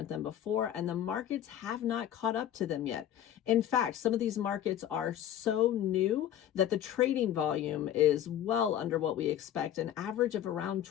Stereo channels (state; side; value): quieter; right; 10.9 dB